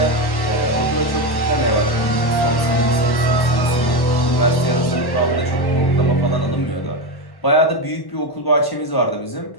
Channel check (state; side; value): late; right; 1.1 ms